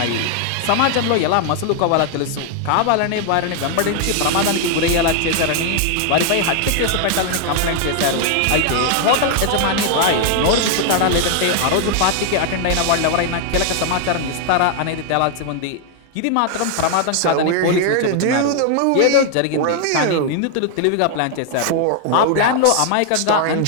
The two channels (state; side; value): different; both; correlation 0.00